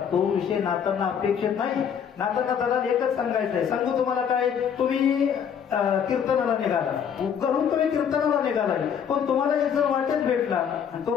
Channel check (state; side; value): quieter; right; 7.8 dB